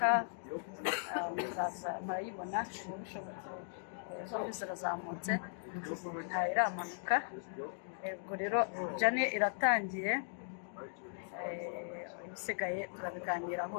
murayibona ubu bishobotse zombi zirazamutse iramanuka. Ubwo rero jane iratangiye, ibisigaye turabiganiraho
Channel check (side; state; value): right; silent; digital silence